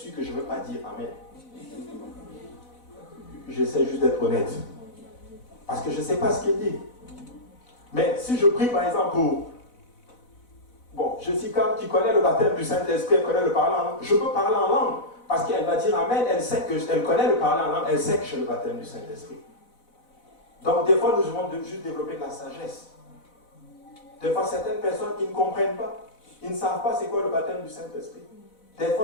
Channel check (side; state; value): right; late; 4.0 ms